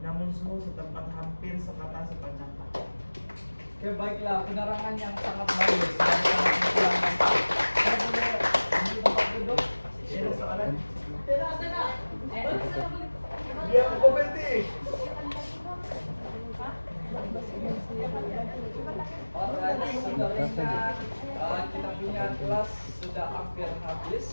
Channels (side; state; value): both; inverted; correlation -1.00